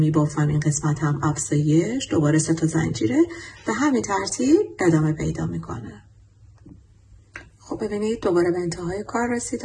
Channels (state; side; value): identical; both; correlation 1.00